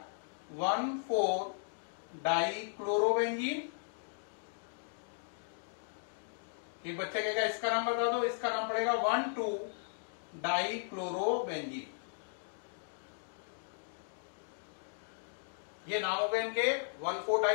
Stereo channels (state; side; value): silent; right; digital silence